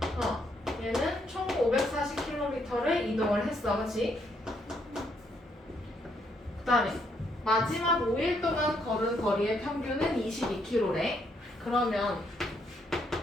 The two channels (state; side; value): normal; both; correlation 0.73